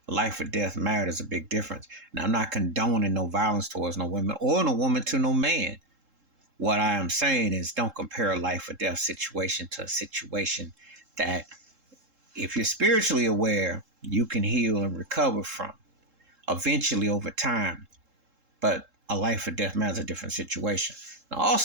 life or death matter is a big difference. Now, I'm not condoning no violence towards no women or no woman to no man. What I am saying is don't compare a life or death situation to a situation that, if you're spiritually aware, you can heal and recover from eventually over time. But a life or death matter is a different situation. Now,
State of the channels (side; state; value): left; late; 3.7 ms